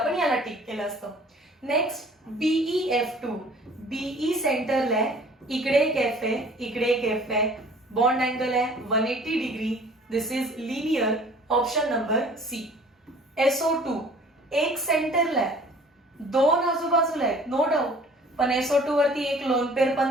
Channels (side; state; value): both; normal; correlation 0.50